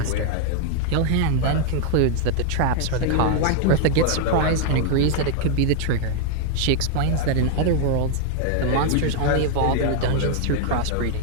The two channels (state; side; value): different; both; correlation 0.00